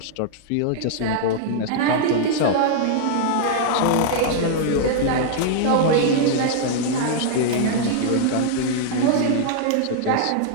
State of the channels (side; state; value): both; different; correlation -0.01